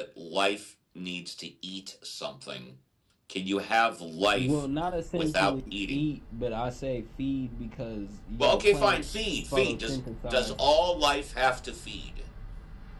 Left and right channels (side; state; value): both; identical; correlation 1.00